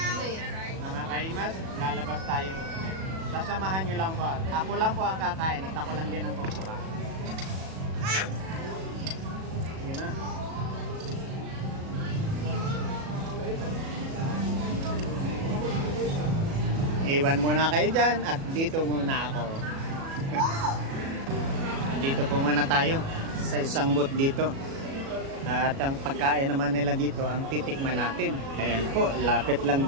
Mga kaimas, lalabas tayo ulit. Sasamahan nyo lang po. Ako lang po ang kakain at ako lang din ang kukuha. Yun na. Iwan muna kayo dyan at dito muna ako. Dito po muna tayo sa isang booth dito. At ang pagkain naman nila dito, ang titikman natin. Ayan po, lapit lang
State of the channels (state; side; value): late; left; 37 ms